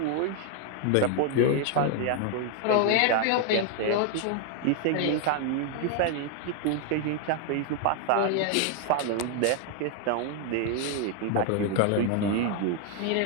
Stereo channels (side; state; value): both; different; correlation 0.00